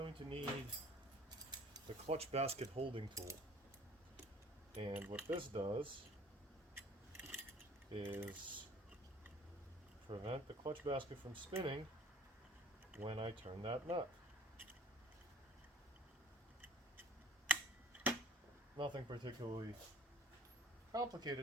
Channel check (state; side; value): normal; both; correlation 0.50